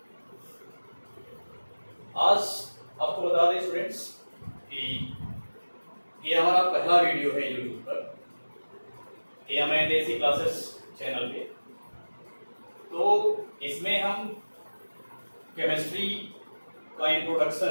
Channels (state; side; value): inverted; both; correlation -1.00